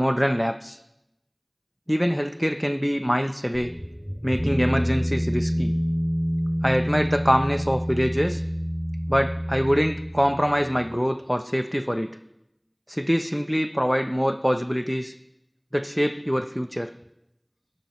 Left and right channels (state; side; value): identical; both; correlation 1.00